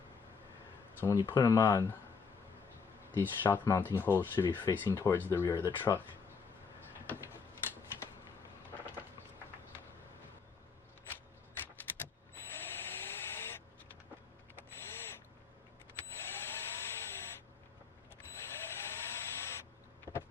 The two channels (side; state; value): right; quieter; 5.4 dB